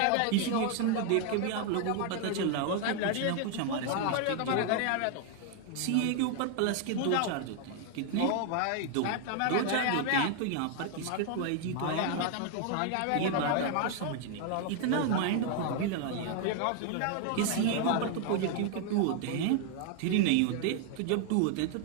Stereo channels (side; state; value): both; different; correlation 0.00